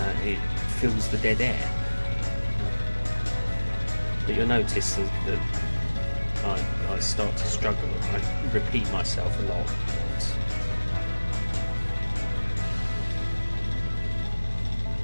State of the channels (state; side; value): inverted; both; correlation -1.00